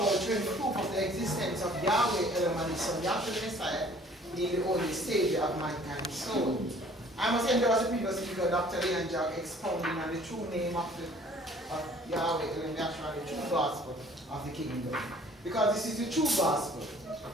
showing proof of the existence of Yahweh, Elohim, and His Son, Yahshua the Messiah, being the only Savior of mankind's soul. I must endorse the previous speaker, Dr. Leon Jack, expounding on the true name of Yahweh, Elohim, Yahshua, the true gospel of the kingdom. Because this is the true gospel.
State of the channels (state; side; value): normal; both; correlation 0.54